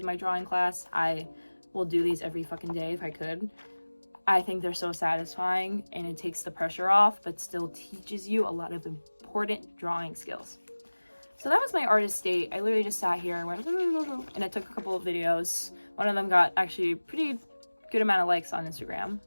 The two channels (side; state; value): both; inverted; correlation -1.00